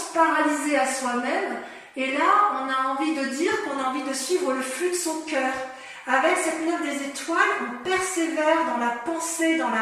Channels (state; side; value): identical; both; correlation 1.00